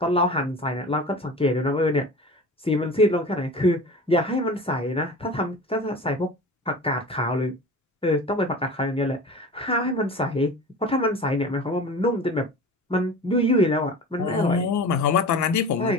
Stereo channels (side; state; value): both; normal; correlation 0.36